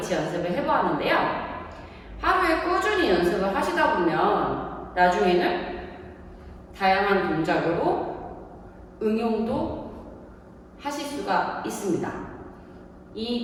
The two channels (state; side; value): identical; both; correlation 1.00